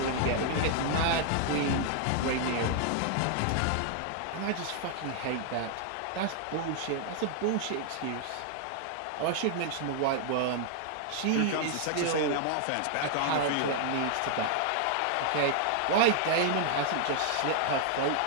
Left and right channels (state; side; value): different; both; correlation 0.00